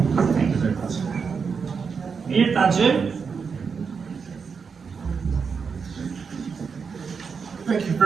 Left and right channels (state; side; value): quieter; left; 5.8 dB